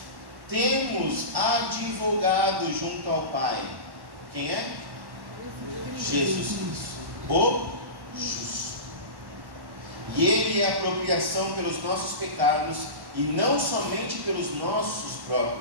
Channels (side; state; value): left; late; 1.1 ms